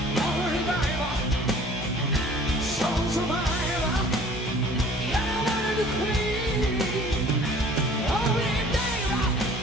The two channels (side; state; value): both; normal; correlation 0.50